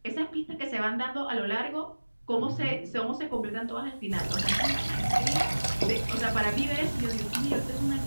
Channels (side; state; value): both; inverted; correlation -1.00